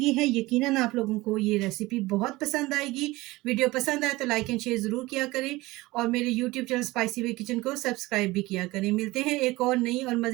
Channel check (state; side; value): quieter; left; 20.1 dB